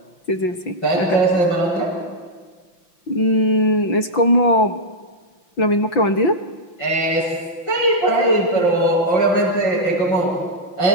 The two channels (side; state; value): right; late; 5.8 ms